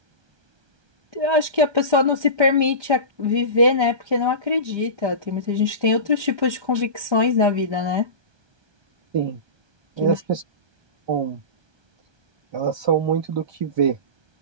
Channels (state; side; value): late; left; 1.2 ms